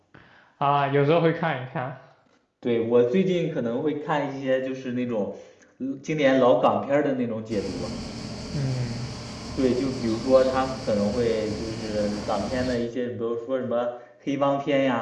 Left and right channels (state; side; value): identical; both; correlation 1.00